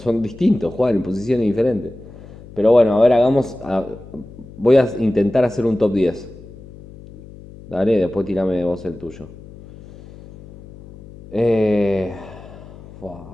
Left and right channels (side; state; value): left; noise; hum, 18 dB below the sound